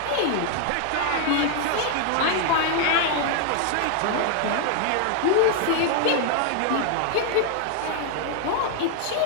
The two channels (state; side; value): different; both; correlation 0.00